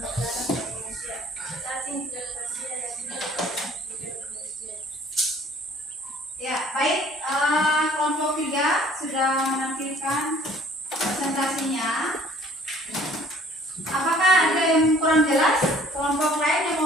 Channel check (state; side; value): normal; both; correlation 0.55